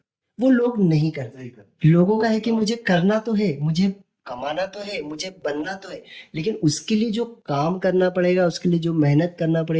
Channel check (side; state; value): both; identical; correlation 1.00